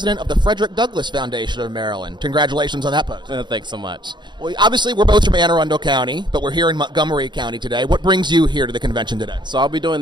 of the Frederick Douglass Foundation of Maryland. Congratulations on that post. Thanks so much. Well, obviously, we're both from Anne Arundel County, but we're here in Montgomery County today. What brings you here to the convention today? So I'll be doing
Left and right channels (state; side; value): late; left; 0.22 ms